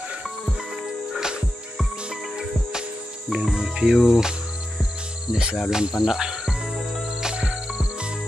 Dengan view desa Bulan Pandak.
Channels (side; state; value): both; normal; correlation 0.89